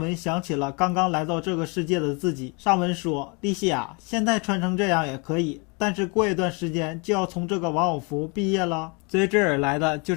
想起了刚刚来到这个世界的自己。上文说：“莉西亚，现在穿成这样也可以，但是过一段时间就要从这个玩偶服毕业了。”随之而来的就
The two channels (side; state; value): right; quieter; 31.6 dB